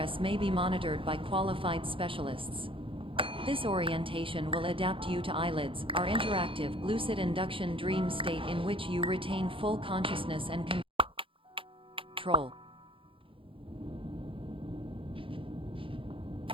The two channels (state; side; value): late; left; 0.25 ms